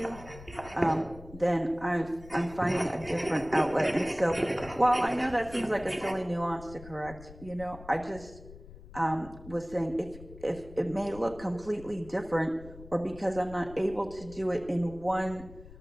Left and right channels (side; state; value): left; noise; rumble, 17 dB below the sound